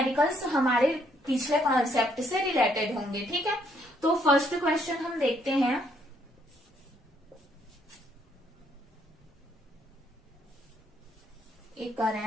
हमारे पिछले कॉन्सेप्ट से रिलेटेड होंगे, ठीक है। तो फर्स्ट क्वेश्चन हम देखते हैं। A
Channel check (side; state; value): both; normal; correlation 0.70